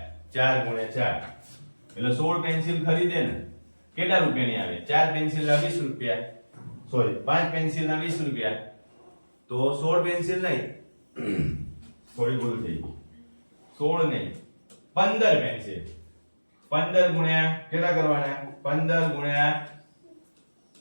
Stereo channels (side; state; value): both; inverted; correlation -1.00